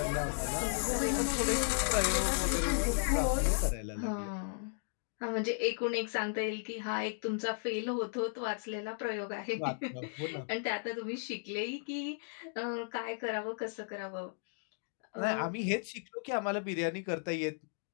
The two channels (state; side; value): silent; right; digital silence